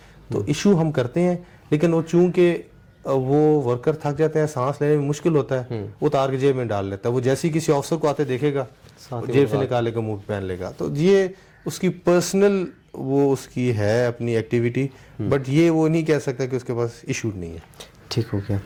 تو ایشو ہم کرتے ہیں. لیکن وہ چونکہ وہ ورکر تھک جاتے ہیں، سانس لینے میں مشکل ہوتا ہے، وہ اتار کے جیب میں ڈال لیتا ہے. وہ جیسے ہی کسی آفیسر کو آتے دیکھے گا جیب سے نکالے گا، منہ پہن لے گا. تو یہ اس کی پرسنل وہ اس کی ہے اپنی ایکٹیویٹی، بٹ یہ وہ نہیں کہہ سکتا کہ اس کے پاس ایشو نہیں ہے. ٹھیک ہو گیا.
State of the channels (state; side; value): identical; both; correlation 1.00